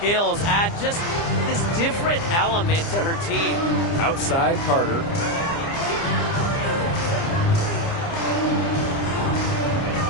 add just this different element to her team. Outside, Carter.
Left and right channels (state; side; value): late; right; 30 ms